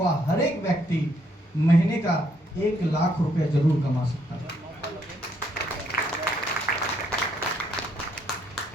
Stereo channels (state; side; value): normal; both; correlation 0.71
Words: हर एक व्यक्ति महीने का 1 लाख रुपया जरूर कमा सकता है।